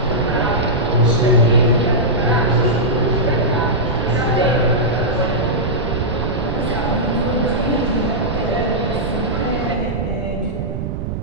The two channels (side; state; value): right; noise; rumble, 4 dB below the sound